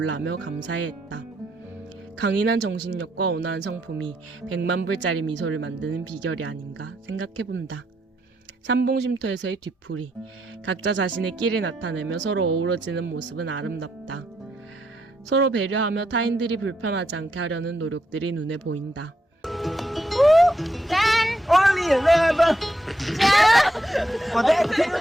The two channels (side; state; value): both; normal; correlation 0.78